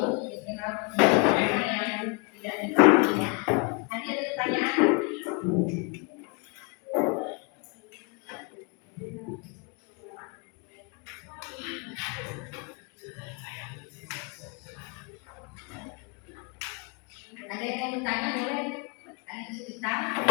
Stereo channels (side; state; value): right; quieter; 32.6 dB